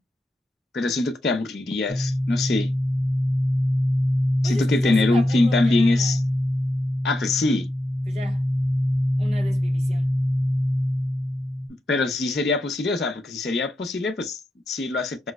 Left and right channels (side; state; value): both; normal; correlation 0.87